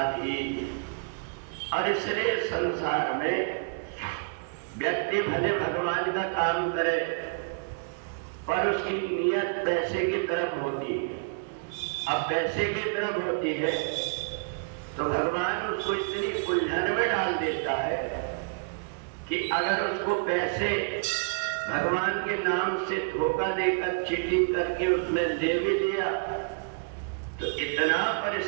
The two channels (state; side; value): quieter; left; 36.6 dB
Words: और इसलिए संसार में व्यक्ति भले भगवान का काम करे पर उसकी नियत पैसे की तरफ होती है। अब पैसे की तरफ होती है तो भगवान उसको इतनी उलझन में डाल देता है कि अगर उसको पैसे भगवान के नाम से धोखा देकर चीटिंग करके उसने ले भी लिया तो इतना